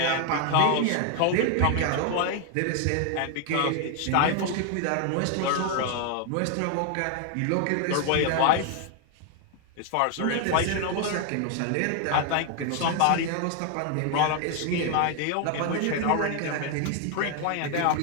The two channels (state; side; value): different; both; correlation 0.00